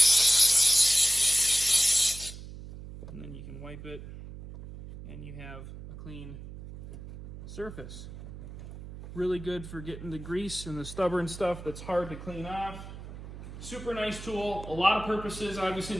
And then you can wipe it and you have a clean surface. Really good for getting the grease and the stubborn stuff that's hard to clean off. Super nice tool, a lot of purposes obviously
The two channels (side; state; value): right; noise; hum, 13 dB below the sound